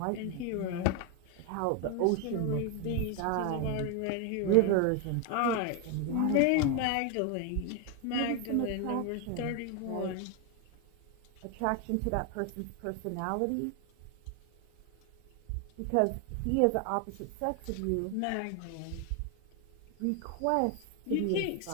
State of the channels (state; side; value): different; both; correlation 0.01